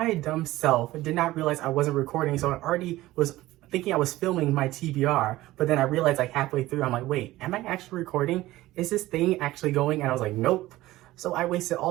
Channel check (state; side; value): quieter; left; 17.0 dB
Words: dumb self did not realize I wasn't recording, so I already was thinking I was filming my TBR, but then I realized like halfway through, I'm like, wait, am I actually recording? Is this thing actually going? And I was like, nope. So I wasted